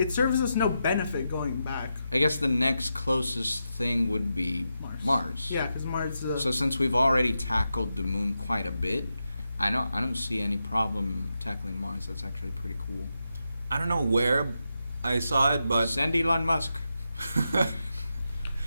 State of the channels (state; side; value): inverted; both; correlation -0.87